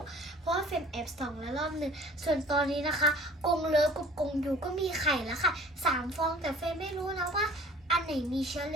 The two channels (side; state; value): both; normal; correlation 0.49